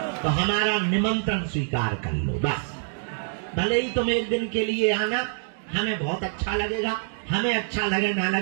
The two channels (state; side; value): silent; left; digital silence